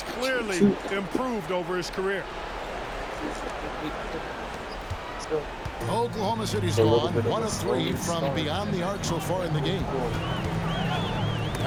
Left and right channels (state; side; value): identical; both; correlation 1.00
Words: clearly improved over his career. Oklahoma City's gone 1 of 3 from beyond the arc so far in the game.